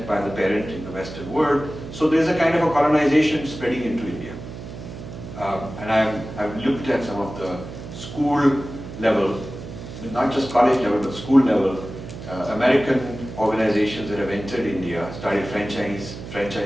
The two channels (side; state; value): right; noise; hum, 11 dB below the sound